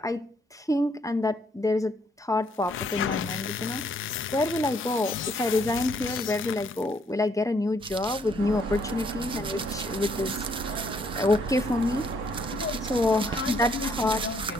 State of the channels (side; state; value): both; normal; correlation 0.69